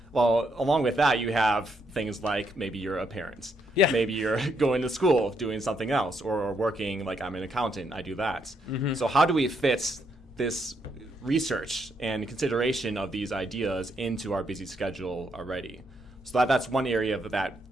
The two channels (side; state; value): both; normal; correlation 0.76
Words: Well, along with that, you have things like maybe you're a parent. Yeah. Maybe you're going to school, doing something else, or working, like I'm an accountant, I do that. So how do we fit this research and consideration of these ideas into our busy schedule already? So that's one area of that